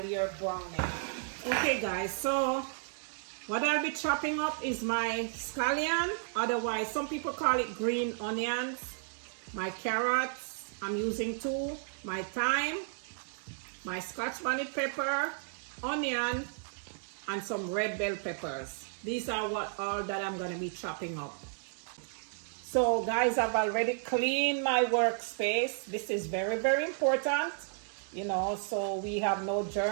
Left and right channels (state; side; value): silent; left; digital silence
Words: you're browning. Okay guys, so what I'll be chopping up is my scallion, otherwise some people call it green onions, my carrots, I'm using 2, my thyme, my Scotch bonnet pepper, onion, and some red bell peppers. These are all that I'm going to be chopping up. So guys, I've already cleaned my workspace. This is very, very important, you know, so we have no